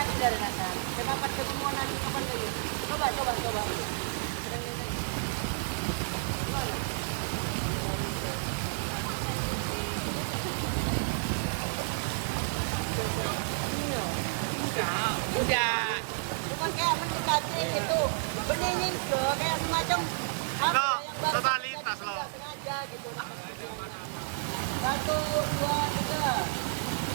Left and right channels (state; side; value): silent; left; digital silence